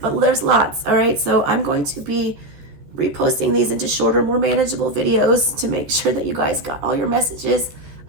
but there's lots. All right, so I'm going to be reposting these into shorter, more manageable videos to make sure that you guys got all your messages.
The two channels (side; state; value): left; late; 14 ms